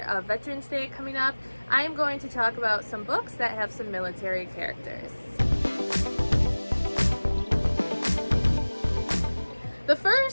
of Veterans Day coming up, I am going to talk about some books that have some military characters. The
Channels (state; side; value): inverted; both; correlation -1.00